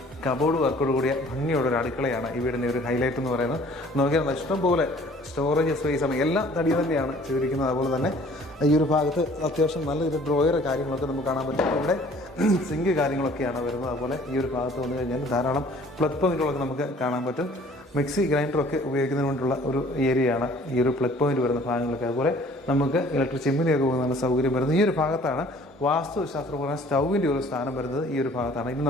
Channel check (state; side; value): normal; both; correlation 0.53